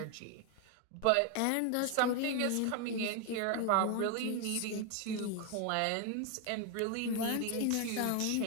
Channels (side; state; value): both; different; correlation 0.01